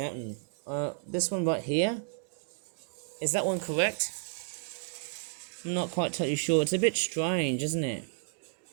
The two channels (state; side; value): silent; left; digital silence